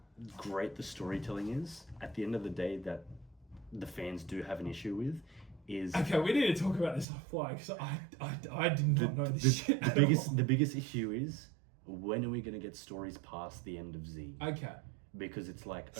great the storytelling is, at the end of the day, that the fans do have an issue with is... Okay, we need to talk about this offline, because I did not know this shit The biggest issue is, when are we going to get stories past the end of Z? Okay. Because it's like...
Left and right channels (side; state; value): left; drops out; at 7.1 s